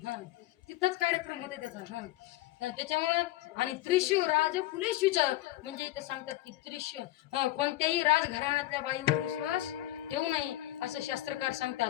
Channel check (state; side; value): quieter; right; 16.3 dB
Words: तिथंच कार्यक्रम होते त्याचा. त्याच्यामुळं आणि त्रिशू राज कुलेशूच म्हणजे इथं सांगतात की त्रिशू कोणत्याही राजघराण्यातल्या बाईवर विश्वास ठेवू नये असं शास्त्रकार